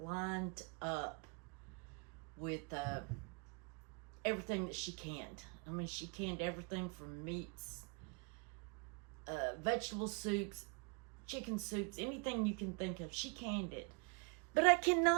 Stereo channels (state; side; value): quieter; left; 32.8 dB